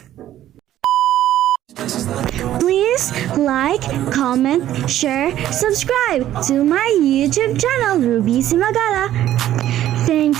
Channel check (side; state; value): left; quieter; 12.6 dB